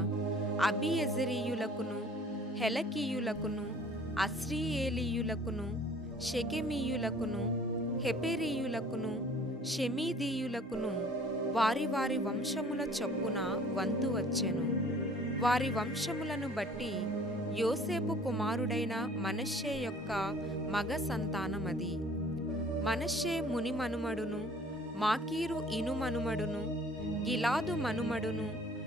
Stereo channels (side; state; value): both; normal; correlation 0.52